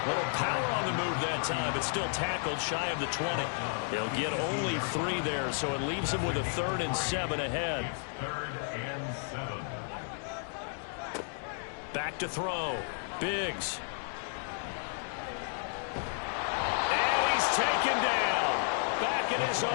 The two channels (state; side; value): silent; right; 56 dB below the other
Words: Little power on the move that time, but still tackled shy of the 20. He'll get only 3 there, so it leaves him with a 3rd and 7 ahead. 3rd and 7. Back to throw. Biggs. Taken down. Back in his